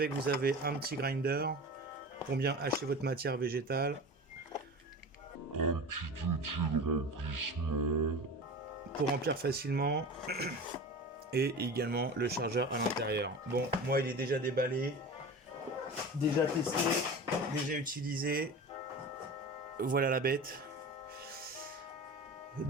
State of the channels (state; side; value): normal; both; correlation 0.32